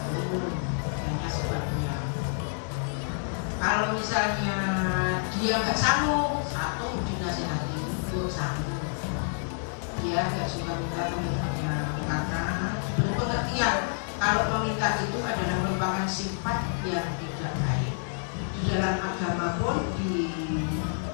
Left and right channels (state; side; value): silent; right; 59 dB below the other